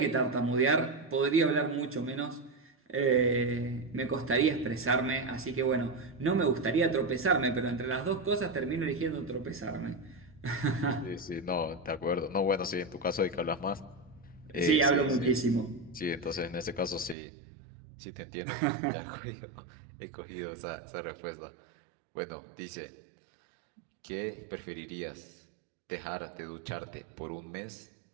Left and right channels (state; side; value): drops out; left; at 17.2 s